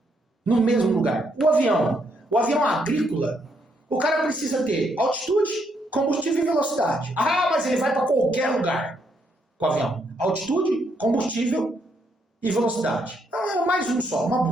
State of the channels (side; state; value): both; normal; correlation 0.75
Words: No mesmo lugar. O avião agrícola, o cara precisa ter altitude, combustível e velocidade. Mas ele vai para qualquer lugar com o avião. Altitude, combustível e velocidade. Mais um só, uma